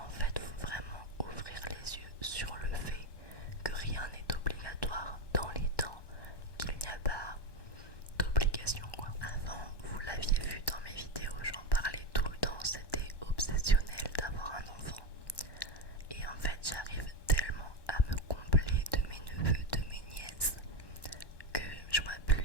fait, faut vraiment ouvrir les yeux sur le fait que rien n'est obligatoire dans les temps, qu'il n'y a pas d'obligation quoi. Avant, vous l'aviez vu dans mes vidéos, j'en parlais tout le temps, c'était obsessionnel d'avoir un enfant. Et en fait, j'arrive tellement à me combler de mes neveux, de mes nièces, que je vois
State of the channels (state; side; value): late; right; 1.1 ms